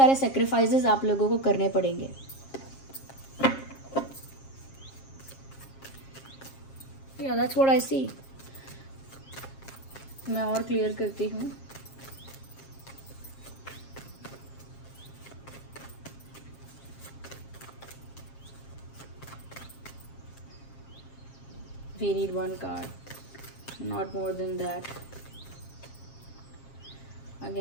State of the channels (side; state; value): right; late; 7.4 ms